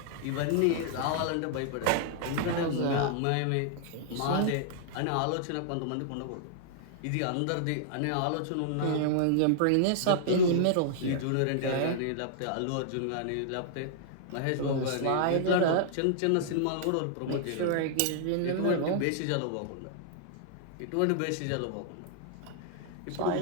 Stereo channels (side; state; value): both; different; correlation -0.01